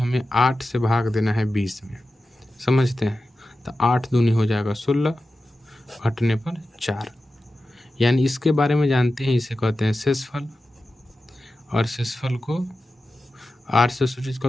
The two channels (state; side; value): normal; both; correlation 0.93